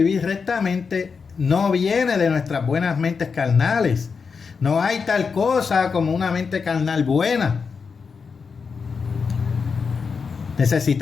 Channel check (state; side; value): quieter; right; 5.4 dB